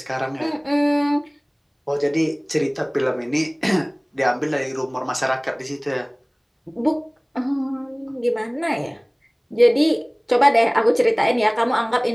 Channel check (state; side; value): identical; both; correlation 1.00